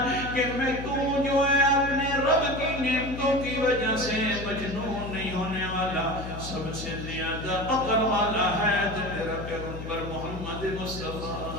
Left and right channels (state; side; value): noise; left; hum, 9 dB below the sound